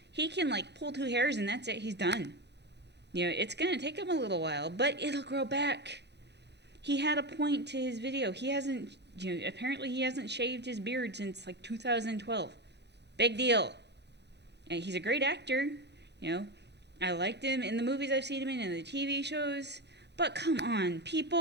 can like pull 2 hairs and that's it. He's done. It's gonna take him a little while, but it'll grow back. He had a point to his video. He hasn't, apparently he hasn't shaved his beard since like 2012. Big deal. And he's a great actor. You know, I liked him in the movies I've seen him in and the TV shows. But come on,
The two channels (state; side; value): late; left; 0.50 ms